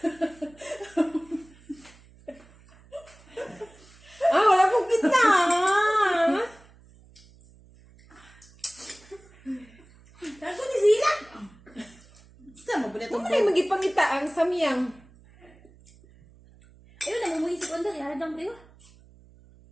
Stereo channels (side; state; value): right; noise; hum, 26 dB below the sound